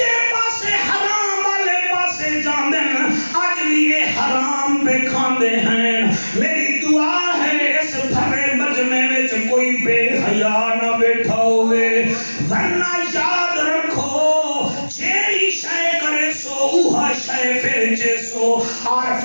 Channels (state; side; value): inverted; both; correlation -1.00